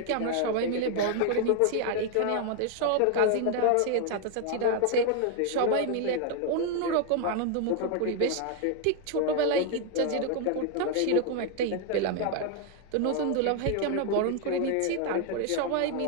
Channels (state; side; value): different; both; correlation 0.00